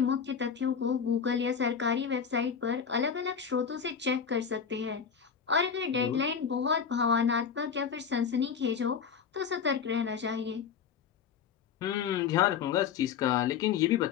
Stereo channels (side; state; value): right; quieter; 6.9 dB